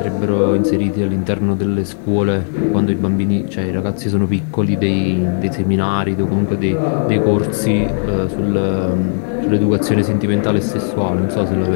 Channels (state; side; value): silent; right; digital silence